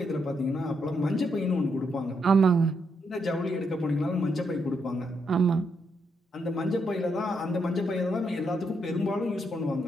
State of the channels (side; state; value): both; normal; correlation 0.79